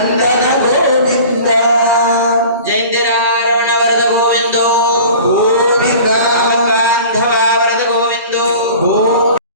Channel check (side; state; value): both; inverted; correlation -0.42